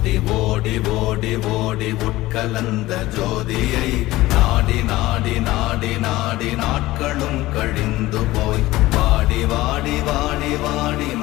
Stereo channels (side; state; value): right; quieter; 17.7 dB